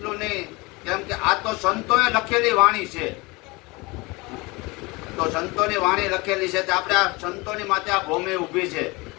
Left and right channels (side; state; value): right; quieter; 24.7 dB